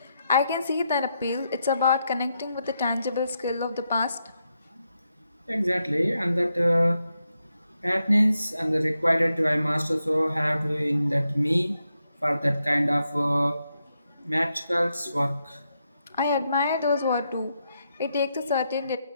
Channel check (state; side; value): inverted; both; correlation -0.83